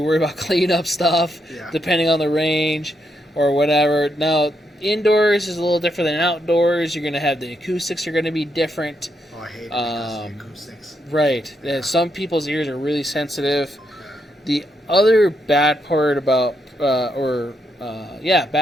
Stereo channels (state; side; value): normal; both; correlation 0.80